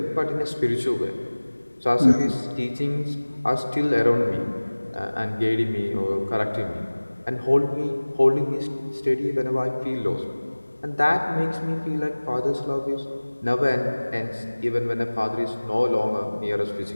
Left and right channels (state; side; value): inverted; both; correlation -1.00